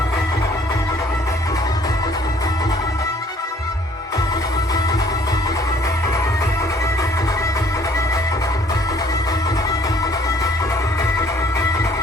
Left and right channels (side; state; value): both; normal; correlation 0.59